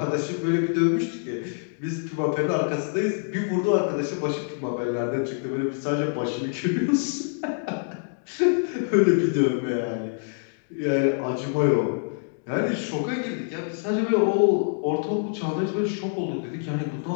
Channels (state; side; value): silent; right; 61 dB below the other